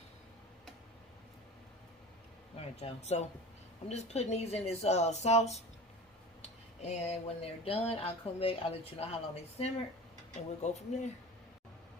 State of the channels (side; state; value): both; normal; correlation 0.35